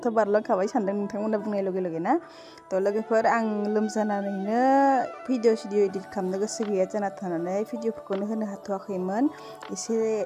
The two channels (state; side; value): identical; both; correlation 1.00